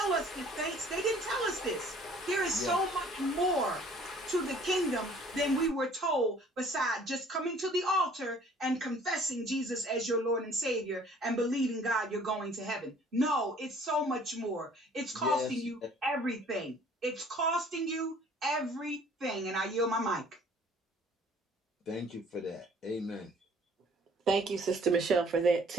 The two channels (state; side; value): normal; both; correlation 0.54